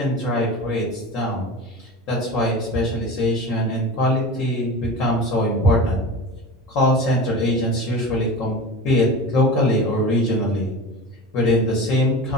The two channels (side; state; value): both; normal; correlation 0.30